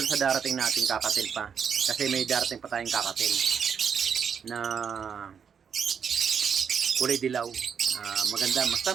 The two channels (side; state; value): left; quieter; 7.1 dB